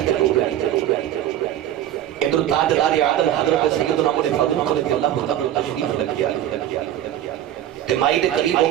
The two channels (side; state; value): left; quieter; 11.9 dB